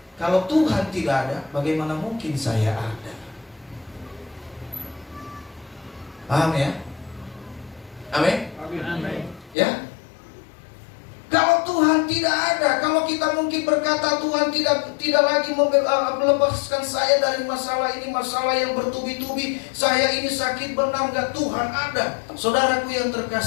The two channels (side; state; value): right; drops out; at 9.6 s